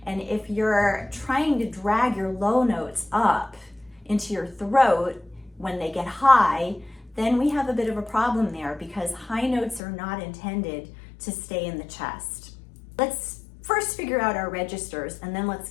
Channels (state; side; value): drops out; right; at 9.8 s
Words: And if you're trying to drag your low notes up into your throat when they get high, then we have a bit of a problem there because high notes are not intended to stay in the chest. Let's first figure out our registers and then let's